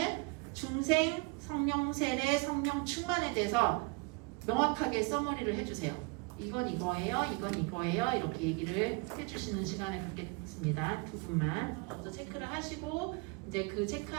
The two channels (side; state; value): left; quieter; 28.6 dB